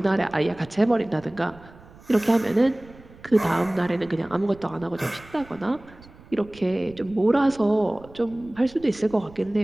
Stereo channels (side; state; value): right; noise; rumble, 22 dB below the sound